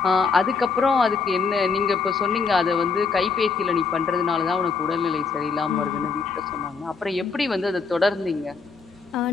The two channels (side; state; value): right; quieter; 5.0 dB